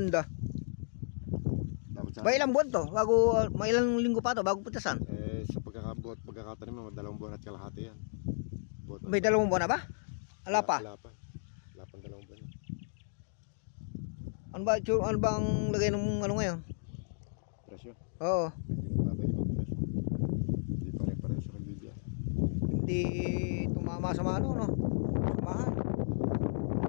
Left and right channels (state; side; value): silent; right; digital silence